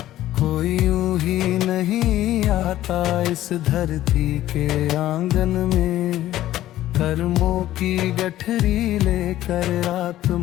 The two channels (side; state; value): right; quieter; 13.9 dB